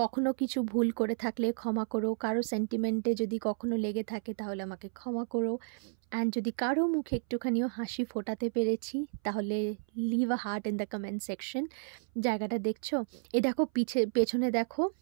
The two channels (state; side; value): silent; left; 56 dB below the other